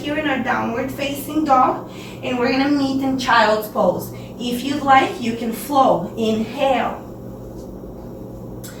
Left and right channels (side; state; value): both; identical; correlation 1.00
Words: in our downward facing dog, and we're gonna meet in child's pose. If you'd like, you can flow. Inhale.